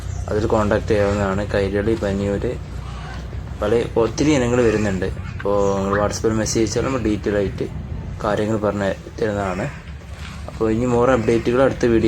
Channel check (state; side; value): identical; both; correlation 1.00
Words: അതിൽ കോൺടാക്ട് ചെയ്യാവുന്നതാണ്. കൈരളി, പനിയൂർ, ഒത്തിരി ഇനങ്ങൾ വരുന്നുണ്ട്. അപ്പോൾ നിങ്ങൾ വാട്സപ്പിൽ മെസ്സേജ് അയച്ചാൽ നമ്മൾ ഡീറ്റെയിൽ ആയിട്ട് കാര്യങ്ങൾ പറഞ്ഞു തരുന്നതാണ്. അപ്പോൾ ഇനി മോർ അപ്ഡേറ്റുകൾ അടുത്ത